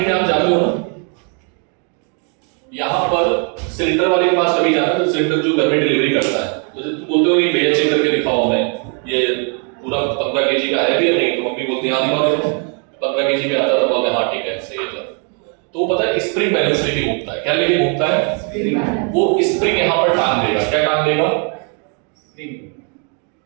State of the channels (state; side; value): quieter; left; 39.1 dB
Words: में आप जाते हो ना, यहाँ पर सिलेंडर वाले के पास कभी जाते हो तो सिलेंडर जो घर में डिलीवरी करता है, तो जब तुम बोलते हो कि भैया चेक करके दिखाओ हमें ये पूरा 15 kg का है भी या नहीं, तो मम्मी बोलती है हाँ दिखाओ देखो 15 kg पे आता, तो बोलते हैं हाँ ठीक है सही है। तो वो पता है स्प्रिंग बैलेंस लेके घूमता है। क्या लेके घूमता है? वो स्प्रिंग यहाँ पर टांग देगा। क्या टांग देगा?